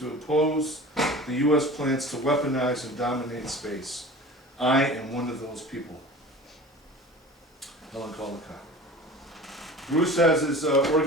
oppose the U.S. plans to weaponize and dominate space. I am one of those people. Helen Caldecott. Bruce has his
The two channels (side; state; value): both; normal; correlation 0.39